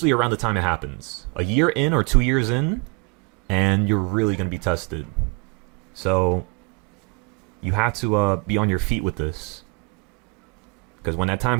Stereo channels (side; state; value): left; quieter; 30.9 dB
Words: around the time it happens. A year in or 2 years in, and you're really going to be tested. So you have to be on your feet with this. Because when that time